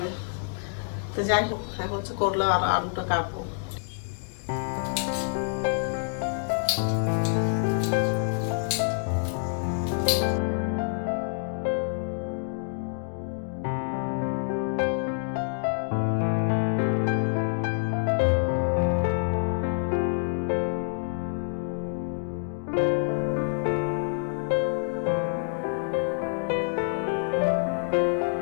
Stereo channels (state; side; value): silent; right; digital silence